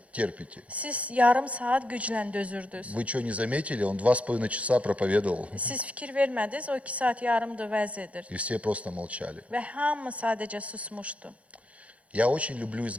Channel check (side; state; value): left; late; 0.065 ms